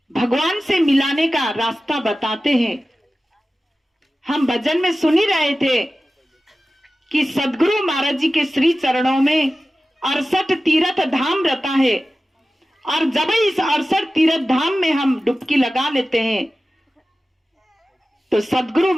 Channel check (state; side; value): normal; both; correlation 0.95